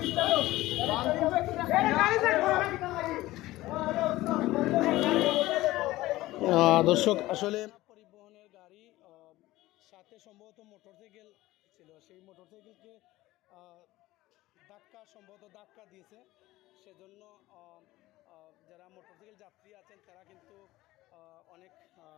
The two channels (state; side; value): quieter; right; 17.4 dB